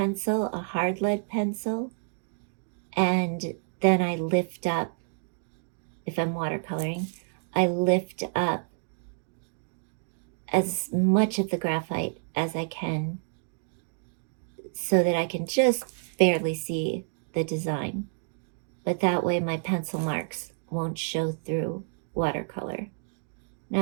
a hard lead pencil, and then I lift up, if I'm watercoloring, I lift up as much of the graphite as I can so that I can just barely see the design. But that way my pencil marks won't show through watercolor. Now,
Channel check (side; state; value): left; silent; digital silence